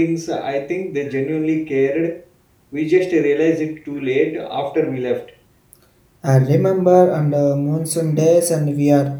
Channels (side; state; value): both; identical; correlation 1.00